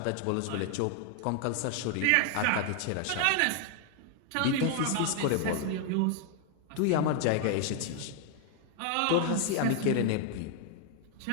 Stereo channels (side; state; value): both; different; correlation 0.00